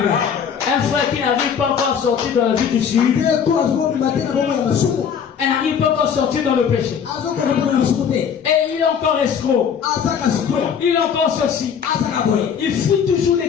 Un frère qui n'arrive pas encore à sortir dans la vie du sud. Elle n'arrive pas encore à sortir dans le péché. Et il est encore escroc. Il est encore ceci. Il fuit toujours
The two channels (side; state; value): right; quieter; 7.4 dB